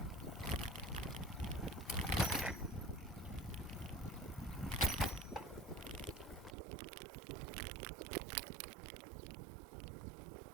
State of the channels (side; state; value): left; drops out; at 6.6 s